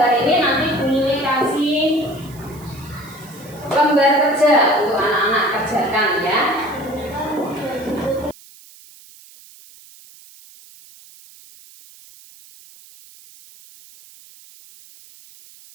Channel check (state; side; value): noise; right; hiss, 23 dB below the sound